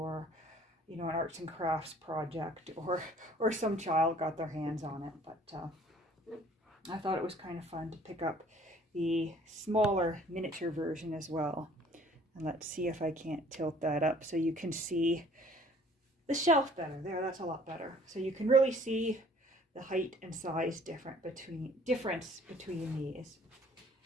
you know, an arts and crafts project, or some child got their hands on it. But I thought it was kind of fun to pick up the smaller miniature version as well. And let's see if I can't tilt that up so you can see the shelf better. There, that's a lot better. So you can really see the height and size difference between these.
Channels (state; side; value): normal; both; correlation 0.55